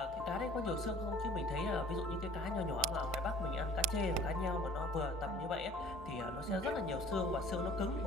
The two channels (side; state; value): both; normal; correlation 0.50